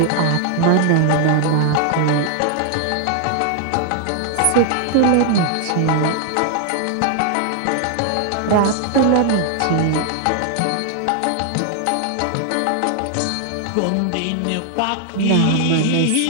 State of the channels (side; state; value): both; different; correlation 0.00